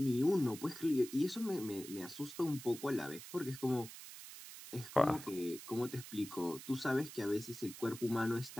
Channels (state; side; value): noise; right; hiss, 13 dB below the sound